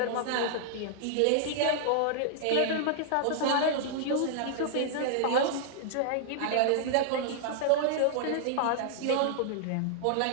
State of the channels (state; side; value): different; both; correlation -0.01